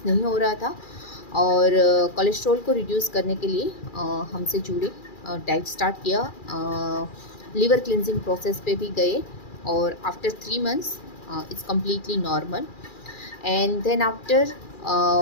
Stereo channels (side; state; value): right; late; 2.4 ms